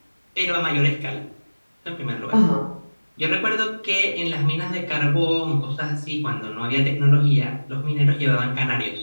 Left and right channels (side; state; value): both; inverted; correlation -1.00